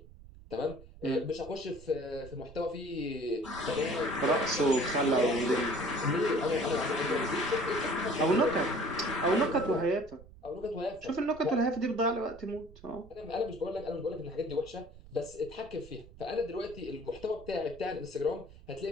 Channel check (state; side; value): noise; right; rumble, 20 dB below the sound